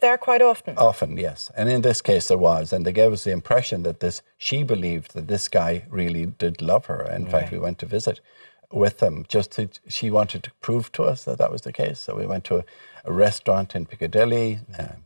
there quite often? Often, yes. And in this case there was. And they gave us the impression that she believed that this guy really did love her. In fact, we went to visit with them she wanted to prove to us that was the case. So we went to a restaurant in Piccadilly.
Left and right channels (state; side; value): inverted; both; correlation -1.00